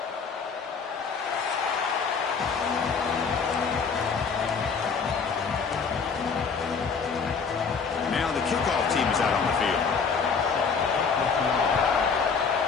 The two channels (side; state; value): right; quieter; 5.6 dB